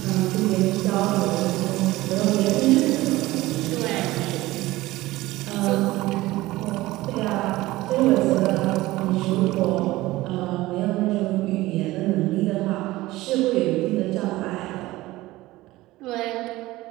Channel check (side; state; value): left; quieter; 18.2 dB